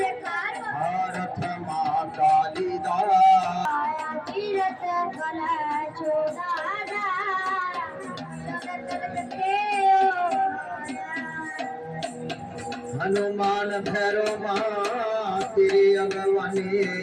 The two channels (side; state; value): both; identical; correlation 1.00